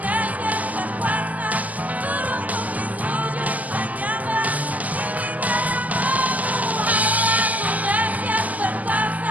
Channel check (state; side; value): late; left; 0.073 ms